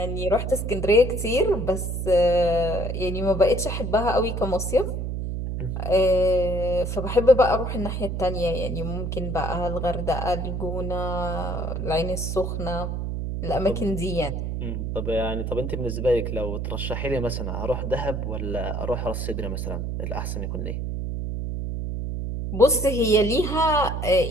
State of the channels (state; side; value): noise; right; hum, 3 dB below the sound